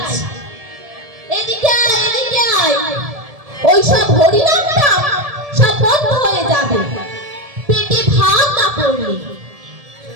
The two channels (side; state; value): left; late; 1.7 ms